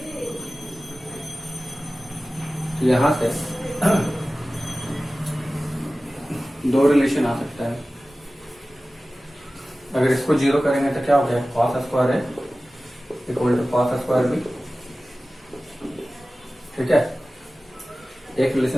यहाँ से दो रिलेशन आ सकता है। अगर इसको 0 करेंगे तो क्या हो गया, cos square A equal to cos square B. ठीक है, एक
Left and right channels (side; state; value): both; normal; correlation 0.96